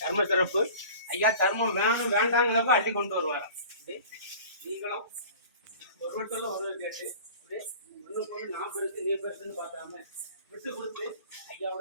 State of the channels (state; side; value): inverted; both; correlation -0.42